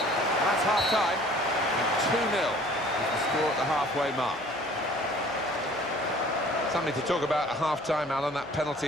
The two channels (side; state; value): left; noise; hum, 25 dB below the sound